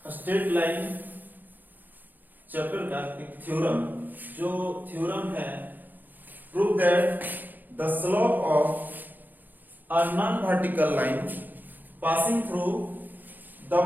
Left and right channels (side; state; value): left; late; 0.086 ms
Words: स्ट्रेट लाइन चैप्टर का एक थ्योरम। जो थ्योरम है prove that the slope of a non vertical line passing through the